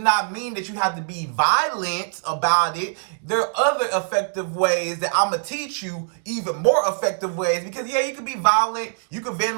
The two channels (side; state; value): left; silent; 63 dB below the other